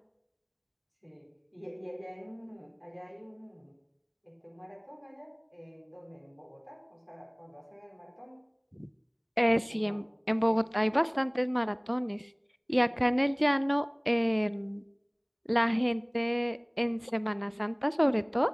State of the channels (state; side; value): identical; both; correlation 1.00